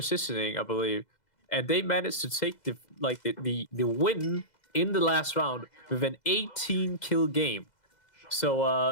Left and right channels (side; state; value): right; late; 2.0 ms